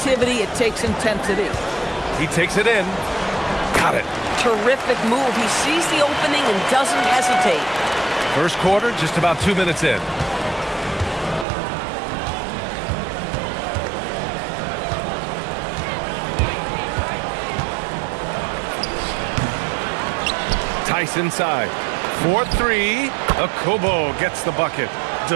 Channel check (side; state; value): left; drops out; at 11.5 s